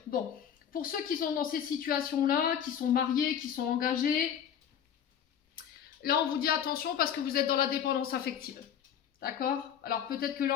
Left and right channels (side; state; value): right; quieter; 8.8 dB